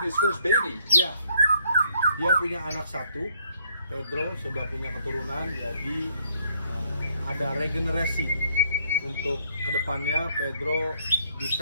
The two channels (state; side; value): inverted; both; correlation -0.68